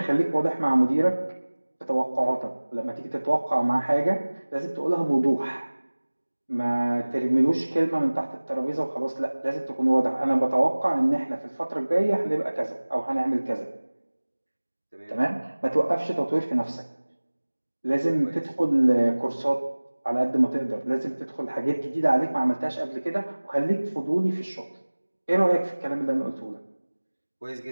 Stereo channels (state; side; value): inverted; both; correlation -1.00